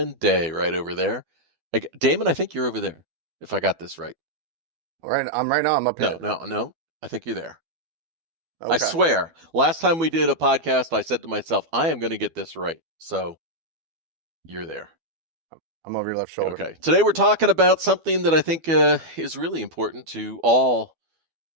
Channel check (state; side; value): late; left; 12 ms